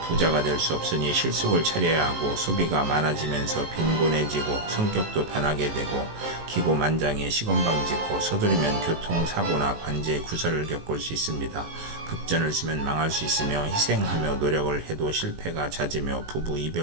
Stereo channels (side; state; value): left; late; 19 ms